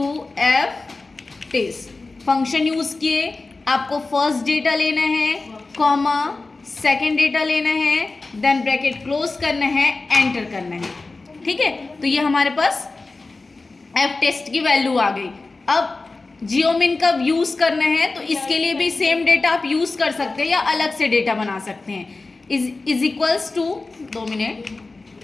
F test function use किए। आपको फर्स्ट डेटा लेना है, कॉमा सेकेंड डेटा लेना है, देन ब्रैकेट क्लोज करना है, एंटर करना है। ठीक है, तो ये हमारे पास एफ टेस्ट की वैल्यू आ गई। अब जियोमिन का यूज करना है तो इसके लिए भी सेम डेटा आप यूज कर सकते हैं या अलग से डेटा बना सकते हैं। Is equals to 2 minute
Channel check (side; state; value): right; quieter; 3.5 dB